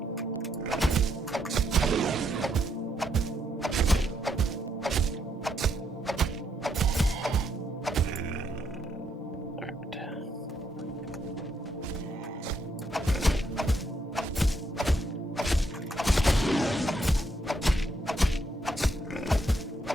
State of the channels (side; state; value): both; normal; correlation 0.76